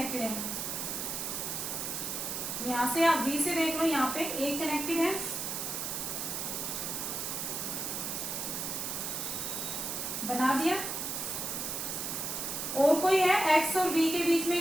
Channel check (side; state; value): right; noise; hiss, 3 dB below the sound